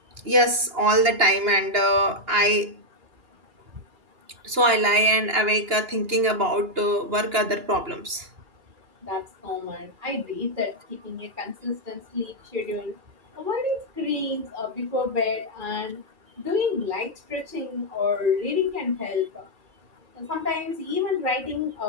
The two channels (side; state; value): left; late; 2.9 ms